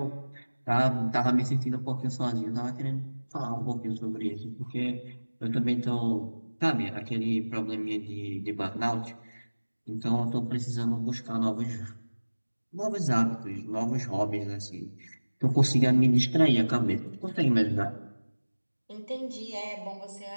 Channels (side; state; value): both; inverted; correlation -1.00